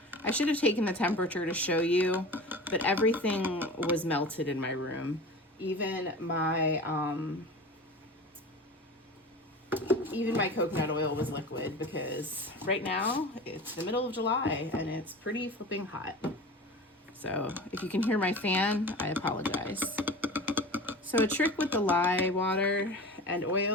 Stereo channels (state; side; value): normal; both; correlation 0.34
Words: I should have taken the temperature to show you, but everything was melted in my room. Even my coconut oil was liquid because right now it's the middle of July and it's pretty flipping hot. So if you can hear my fan, I apologize. So a trick with the lye water and